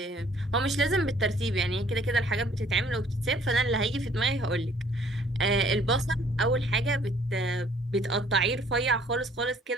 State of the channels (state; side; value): normal; both; correlation 0.59